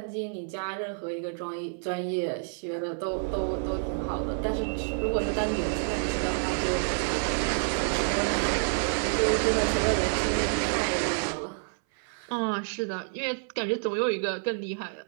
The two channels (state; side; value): silent; left; 59 dB below the other